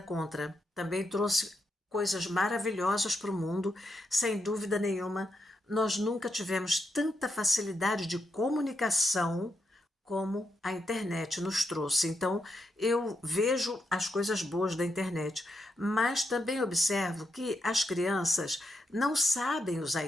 também trouxe coisas maravilhosas para o mundo, sem dúvida nenhuma. Nós nunca tivemos tanta facilidade de comunicação como a internet nos trouxe. Então, eu vejo as coisas boas da internet, mas também observo que as crianças não sabem usar a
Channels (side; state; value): both; normal; correlation 0.82